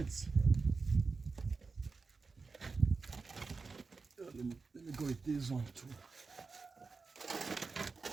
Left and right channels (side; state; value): left; quieter; 4.4 dB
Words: Let me go with this one too.